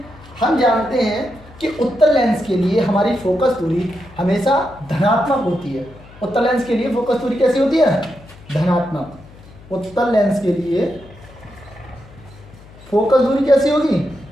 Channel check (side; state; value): left; noise; hum, 22 dB below the sound